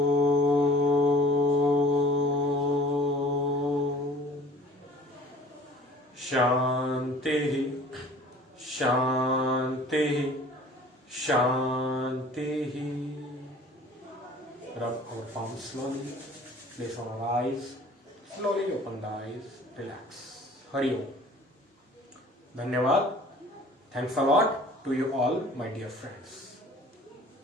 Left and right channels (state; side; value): normal; both; correlation 0.49